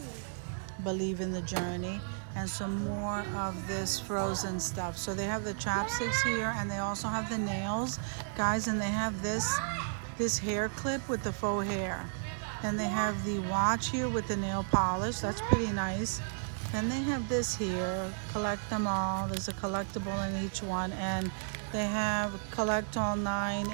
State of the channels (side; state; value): left; silent; digital silence